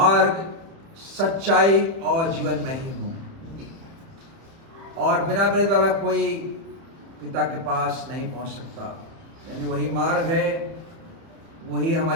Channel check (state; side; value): late; left; 30 ms